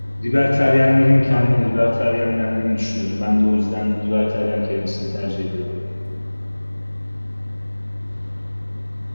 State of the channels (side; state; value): both; inverted; correlation -1.00